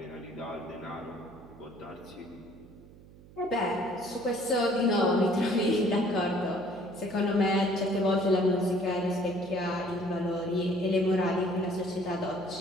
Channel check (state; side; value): noise; right; hum, 21 dB below the sound